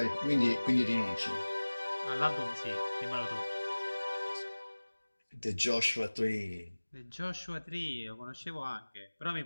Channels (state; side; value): inverted; both; correlation -1.00